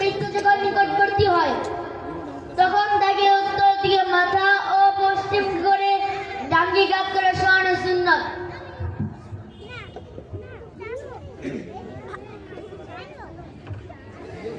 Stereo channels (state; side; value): identical; both; correlation 1.00